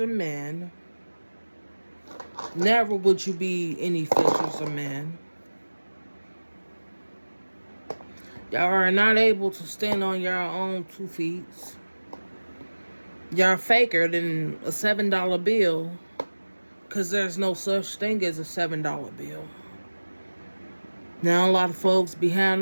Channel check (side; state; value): both; inverted; correlation -1.00